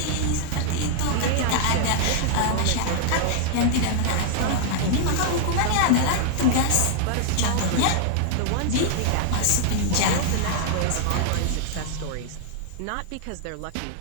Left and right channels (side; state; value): both; different; correlation -0.01